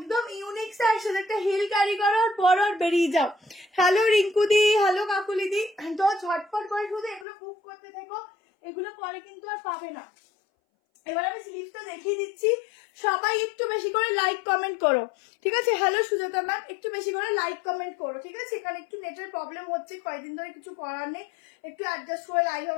ইউনিক স্টাইল। সাথে একটা হিল ক্যারি করো আর পরো আর বেরিয়ে যাও। হ্যালো রিঙ্কুদি, হ্যালো কাকুলিদি, তো ঝটপট করে শুধু এগুলো বুক করতে থেকো, এগুলো পরে কিন্তু আর পাবে না। এবার আমি স্লিভসটা দেখিয়ে দিচ্ছি, সবাই একটু বেশি করে লাইক কমেন্ট করো, ঠিক আছে। হ্যালো সুজাতা ম্যাম, একটু বেশি করে লাইক কমেন্ট করো, ঠিক আছে। এখানে একটু নেটের প্রবলেম হচ্ছে কয়েকদিন ধরে, কিছু করার নেই, একটু অ্যাডজাস্ট করে লাইভ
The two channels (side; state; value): right; drops out; at 7.2 s